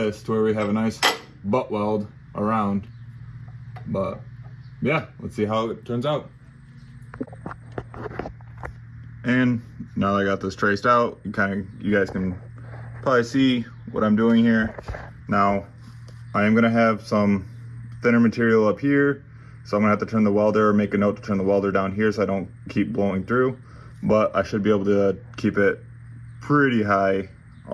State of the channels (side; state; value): both; identical; correlation 1.00